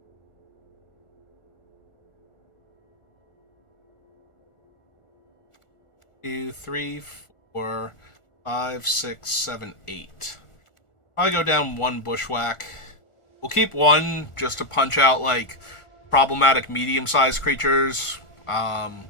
2, 3, 4, 5, 6, 7, 8. Probably go down 1 bushwhack. We'll keep 1 just to punch out, like, problematic medium-sized creatures.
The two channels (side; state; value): right; late; 1.4 ms